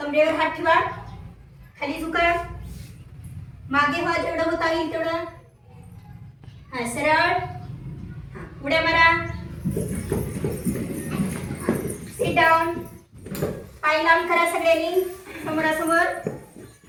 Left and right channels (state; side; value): identical; both; correlation 1.00